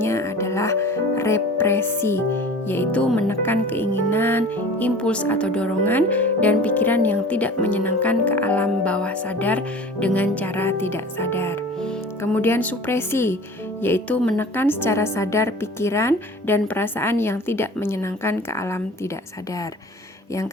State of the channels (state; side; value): normal; both; correlation 0.41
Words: adalah represi, yaitu menekan keinginan, impuls atau dorongan, dan pikiran yang tidak menyenangkan ke alam bawah sadar dengan cara tidak sadar. Kemudian supresi, yaitu menekan secara sadar pikiran dan perasaan yang tidak menyenangkan ke alam tidak sadar.